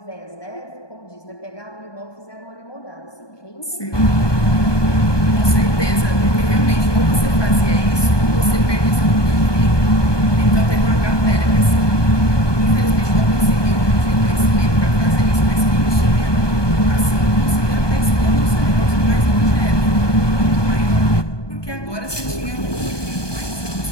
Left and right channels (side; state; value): right; late; 1.2 ms